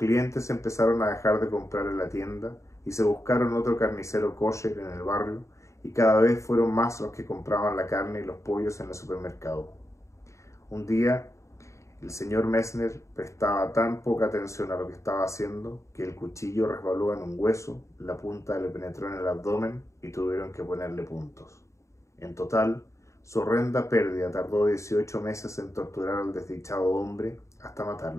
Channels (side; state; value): right; late; 0.14 ms